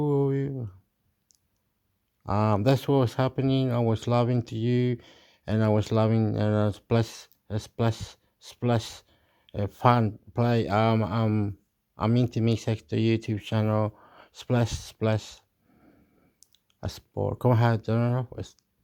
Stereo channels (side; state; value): both; identical; correlation 1.00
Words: That's what was happening. I was loving to you, and I was loving, and I was splash, fun play. I'm into Mix Extra YouTube channel, splash, a sport. Como é que